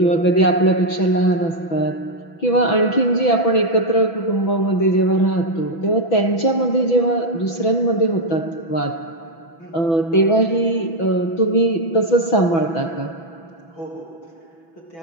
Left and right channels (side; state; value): right; late; 6.1 ms